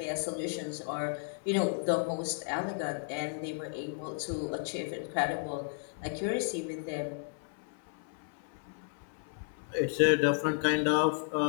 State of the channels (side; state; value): right; silent; 56 dB below the other